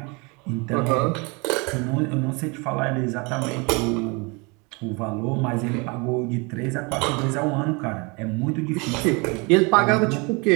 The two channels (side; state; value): left; quieter; 29.1 dB